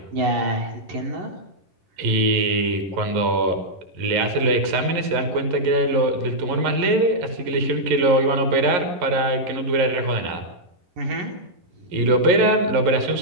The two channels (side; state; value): left; late; 11 ms